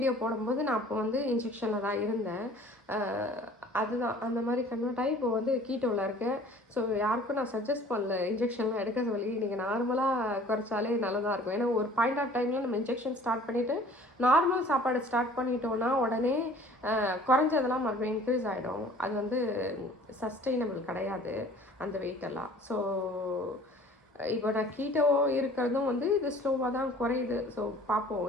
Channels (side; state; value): both; normal; correlation 0.50